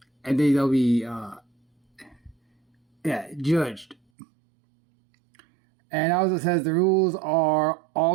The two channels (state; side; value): drops out; left; at 4.0 s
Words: and then they'll be judged. And also says the rules are